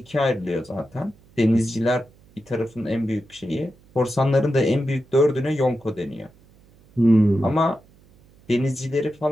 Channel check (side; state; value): right; noise; hum, 28 dB below the sound